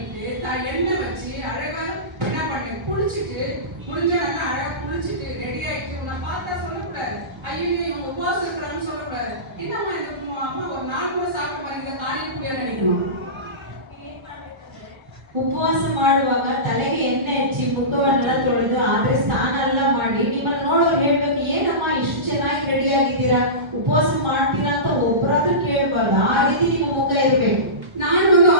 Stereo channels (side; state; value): left; late; 1.3 ms